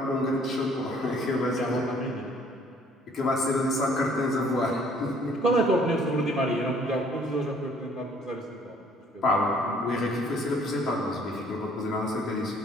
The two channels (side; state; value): both; normal; correlation 0.59